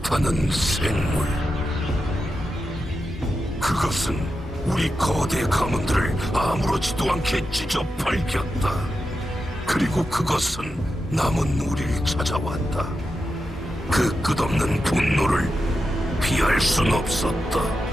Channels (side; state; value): both; normal; correlation 0.89